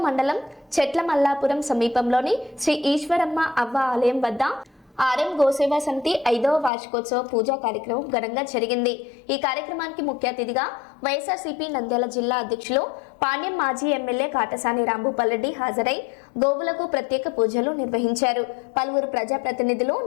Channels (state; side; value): drops out; right; at 6.7 s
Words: మండలం చెట్లమల్లాపురం సమీపంలోని శ్రీ ఈశ్వరమ్మ అవ్వ ఆలయం వద్ద ఆర్ఎం గోసేవా సమితి 5వ వార్షికోత్సవ పూజా కార్యక్రమం ఘనంగా జరిగింది. ఈ కార్యక్రమానికి ముఖ్య అతిథిగా వైఎస్ఆర్సీపీ నంద్యాల జిల్లా అధ్యక్షులు పాణ్యం మాజీ ఎమ్మెల్యే కాటసాని రాంభూపాల్రెడ్డి హాజరై గోవులకు ప్రత్యేక పూజలు నిర్వహించారు. పలువురు ప్రజాప్రతినిధులు